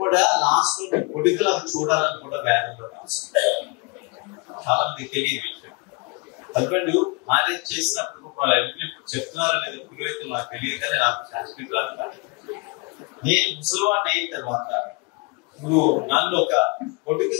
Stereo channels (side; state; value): right; quieter; 28.9 dB